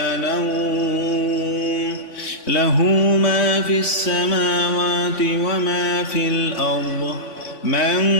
نوم له ما في السماوات وما في الأرض من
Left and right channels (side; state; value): right; late; 3.5 ms